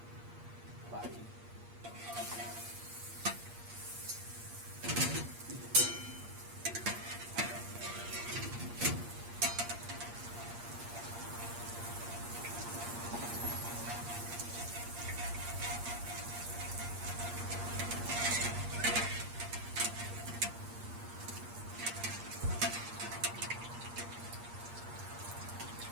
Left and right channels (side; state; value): left; late; 8.6 ms